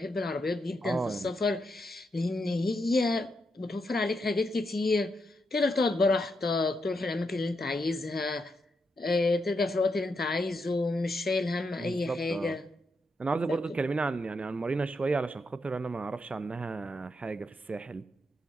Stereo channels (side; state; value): both; normal; correlation 0.82